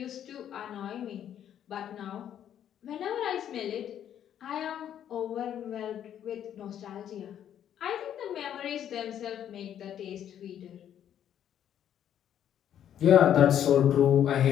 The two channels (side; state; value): right; quieter; 10.1 dB